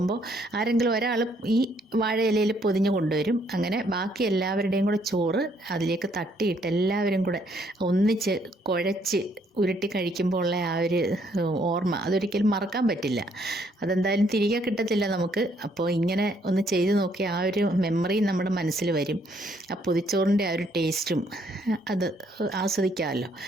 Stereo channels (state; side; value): normal; both; correlation 0.68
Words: ആരെങ്കിലും ഒരാൾ ഈ വാഴയിലയിൽ പൊതിഞ്ഞ് കൊണ്ടുവരും. അങ്ങനെ ബാക്കി എല്ലാവരുടെയും കൂടെ ചോറ് അതിലേക്ക് തട്ടിയിട്ട് എല്ലാവരും കൂടെ ഒന്നിച്ച് കുഴച്ച് ഉരുട്ടി കഴിക്കുമ്പോൾ ഉള്ള ആ ഒരു ഓർമ്മ അതൊരിക്കലും മറക്കാൻ പറ്റില്ല. അതെന്തായാലും തിരികെ കിട്ടത്തില്ല നമുക്ക്. അപ്പോൾ ഇങ്ങനെ ഒന്ന് ചെയ്ത് നോക്കി ആ ഒരു മെമ്മറി നമ്മുടെ മനസ്സിൽ വരും. ആ പൊതിച്ചോറിൻ്റെ ആ ഒരു ടേസ്റ്റും അത് ആസ്വദിക്കാമല്ലോ.